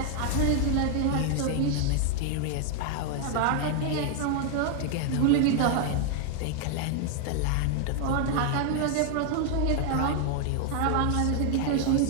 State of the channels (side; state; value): both; different; correlation 0.00